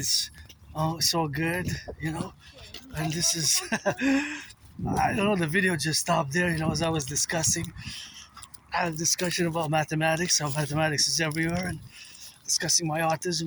so good, you know. And this is, I don't know, the video just stopped there, you know, as I was discussing. I had a discussion about mathematics, how mathematics is everywhere, and discussing my autism,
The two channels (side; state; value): both; identical; correlation 1.00